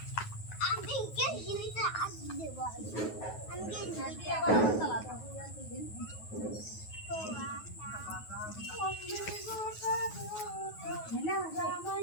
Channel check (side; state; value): right; late; 9.4 ms